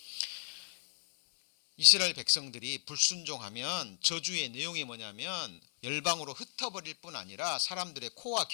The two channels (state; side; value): silent; right; 55 dB below the other